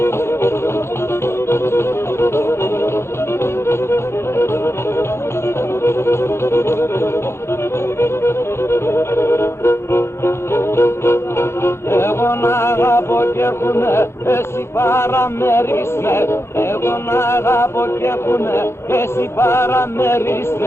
να αγαπώ κι έχουνε, εσύ παραμερίστε. Εγώ να αγαπώ κι έχουνε, εσύ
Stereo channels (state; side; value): late; right; 0.12 ms